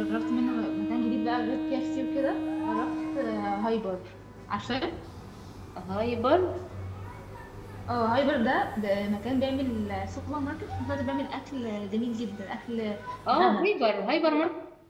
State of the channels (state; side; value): identical; both; correlation 1.00